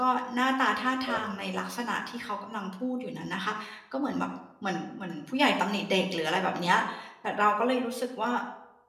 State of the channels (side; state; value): both; identical; correlation 1.00